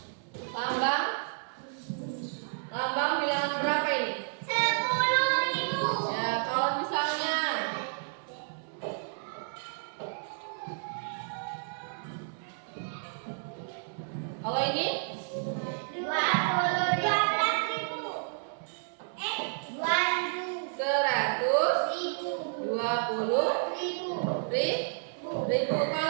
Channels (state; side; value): silent; left; 57 dB below the other